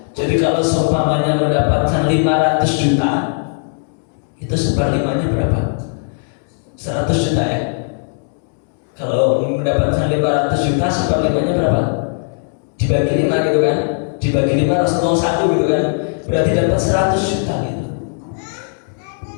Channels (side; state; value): right; silent; digital silence